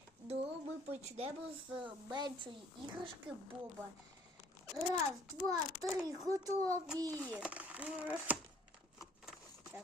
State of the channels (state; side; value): normal; both; correlation 0.58